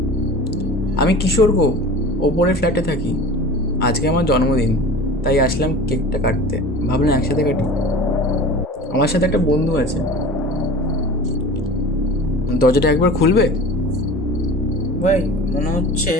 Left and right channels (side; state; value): both; normal; correlation 0.38